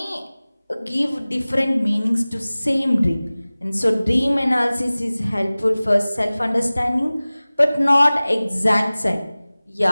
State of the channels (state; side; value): inverted; both; correlation -0.99